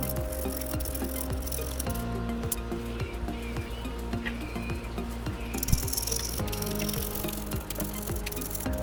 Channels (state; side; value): identical; both; correlation 1.00